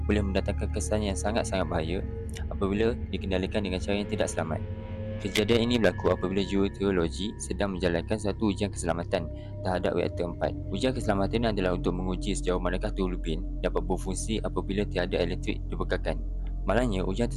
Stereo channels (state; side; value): identical; both; correlation 1.00